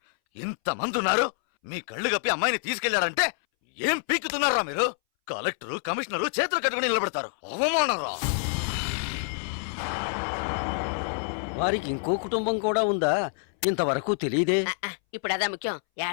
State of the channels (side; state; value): right; silent; 60 dB below the other